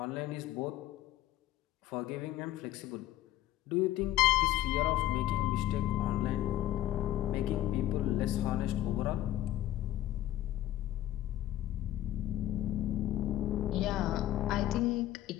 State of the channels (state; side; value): quieter; right; 13.9 dB